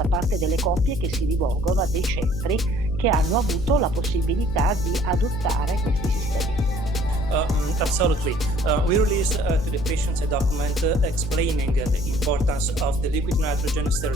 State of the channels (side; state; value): left; noise; hum, 8 dB below the sound